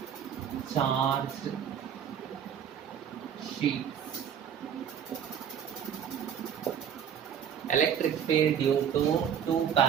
charged sheets. Electric field due to two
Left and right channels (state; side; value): quieter; left; 8.5 dB